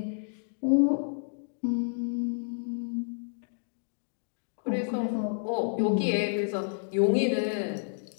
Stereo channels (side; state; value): right; silent; digital silence